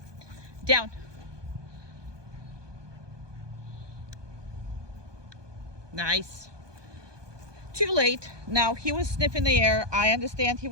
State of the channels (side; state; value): left; late; 1.2 ms